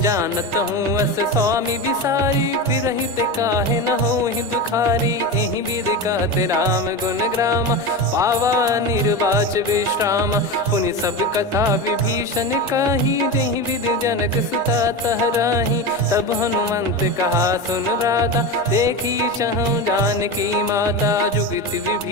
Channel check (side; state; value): both; normal; correlation 0.22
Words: जानत हूँ अस स्वामी बिसारी फिर हित काहे न हो ही दुखारी एहि विध कहते राम गुण ग्राम पावा निर्वाच विश्राम पुनि सब कथा विभीषण काही जहि विध जनक सुता तहराही तब हनुमंत कहा सुन भ्राता देखी चहु जानकी माता जुगित